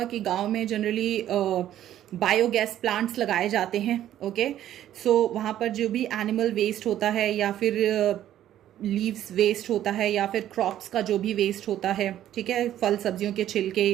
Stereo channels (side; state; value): left; quieter; 11.9 dB